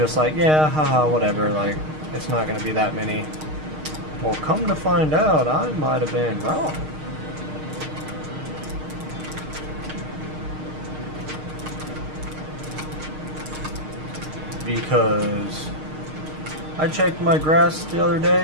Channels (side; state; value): left; late; 6.5 ms